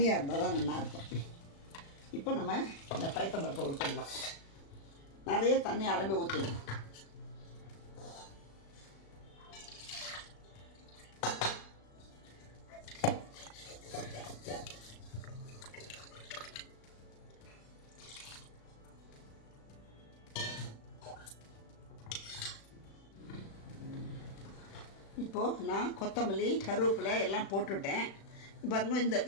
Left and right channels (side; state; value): right; late; 36 ms